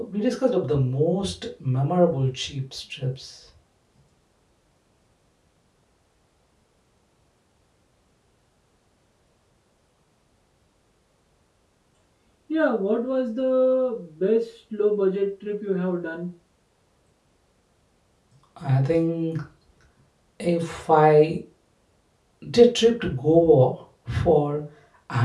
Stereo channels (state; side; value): identical; both; correlation 1.00